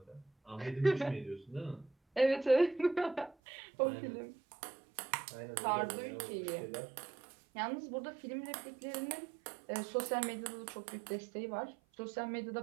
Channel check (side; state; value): left; drops out; at 3.4 s